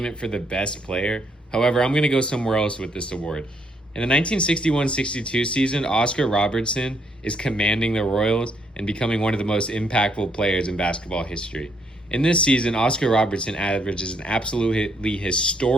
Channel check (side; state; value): both; normal; correlation 0.72